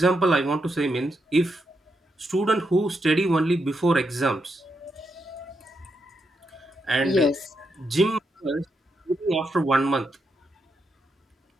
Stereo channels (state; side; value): normal; both; correlation 0.82